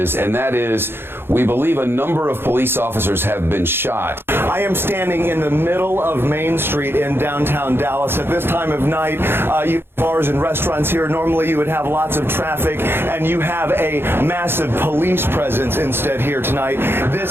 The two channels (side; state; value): left; late; 0.11 ms